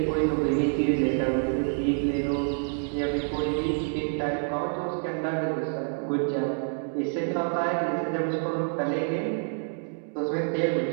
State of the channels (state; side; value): silent; left; 60 dB below the other